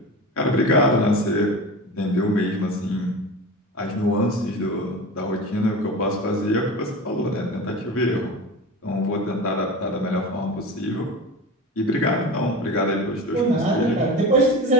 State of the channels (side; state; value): both; normal; correlation 0.30